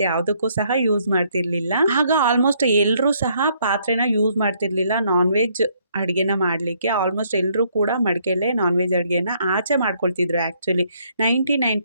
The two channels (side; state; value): both; inverted; correlation -0.69